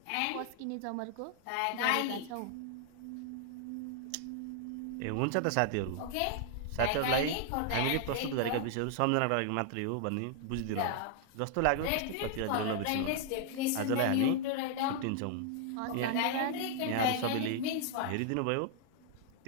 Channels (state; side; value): different; both; correlation 0.00